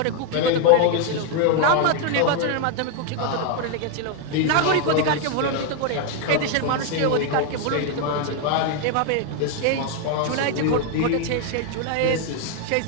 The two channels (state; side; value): different; both; correlation 0.01